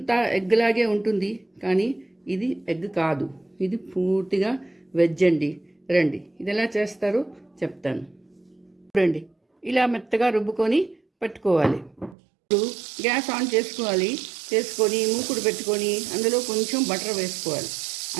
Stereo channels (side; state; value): left; drops out; at 12.2 s